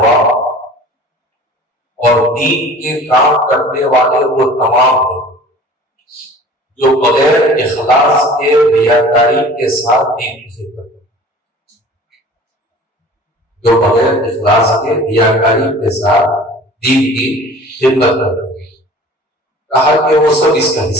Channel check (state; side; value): normal; both; correlation 0.45